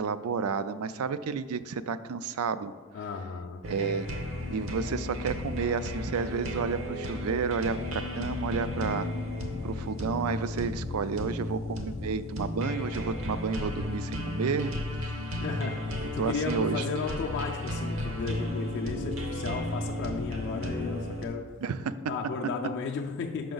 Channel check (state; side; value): normal; both; correlation 0.23